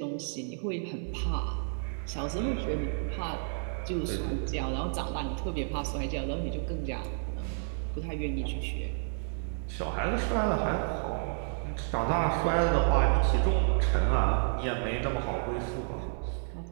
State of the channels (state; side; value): silent; left; digital silence